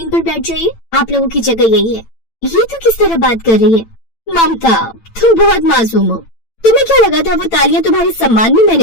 पर बैठ जाइए, आप लोगों की जगह यही है। ये तो किस तरह बात कर रही है? ममता, तुम बहुत मासूम हो। तुम्हें क्या लगा था वो तालियां तुम्हारे सम्मान में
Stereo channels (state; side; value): late; right; 8.9 ms